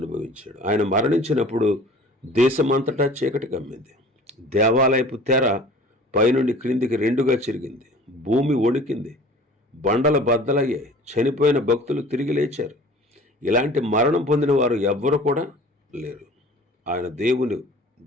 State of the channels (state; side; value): normal; both; correlation 0.46